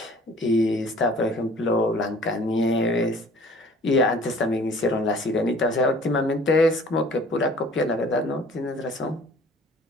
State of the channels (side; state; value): both; normal; correlation 0.50